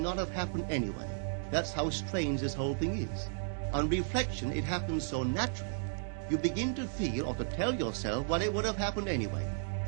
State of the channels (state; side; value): silent; left; digital silence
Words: have happened anyway. That's how strange this whole thing is. On reflection, it happens so naturally. You begin to feel or to tell yourself, well, it would have happened anyway.